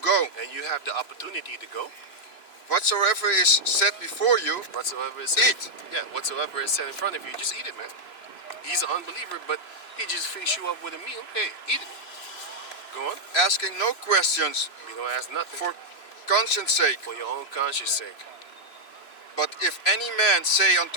And you have the opportunity to go. whatsoever is set before you, Whatsoever is said, eat. yeah, whatsoever is set in front of you, just eat it, man. He's an unbeliever, but he just feeds you up with a meal. Hey, eat it. Go on. asking no questions You don't ask nothing for conscience sake. for your own conscience sake. But if any man say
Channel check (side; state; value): right; late; 2.9 ms